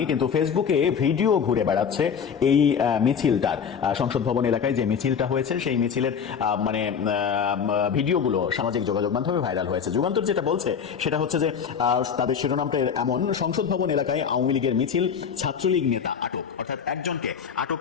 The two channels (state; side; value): quieter; right; 7.0 dB